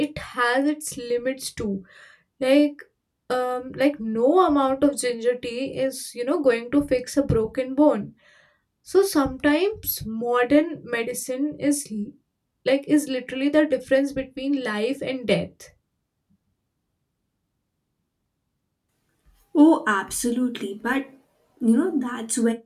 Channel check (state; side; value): identical; both; correlation 1.00